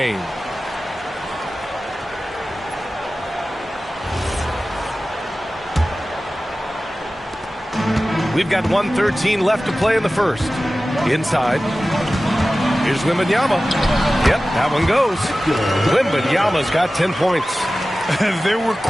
We've got 1:13 left to play in the first. Inside. Here's Wembanyama. Yep, that one goes. Wembanyama's got 10 points. There were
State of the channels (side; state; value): both; normal; correlation 0.96